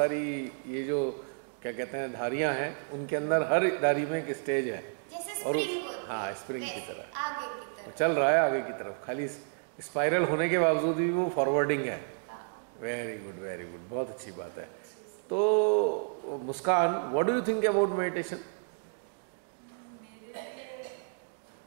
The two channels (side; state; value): left; silent; digital silence